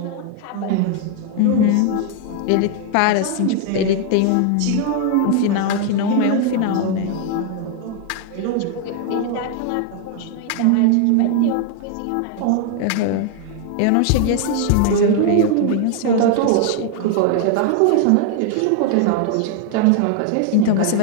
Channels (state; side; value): different; both; correlation 0.00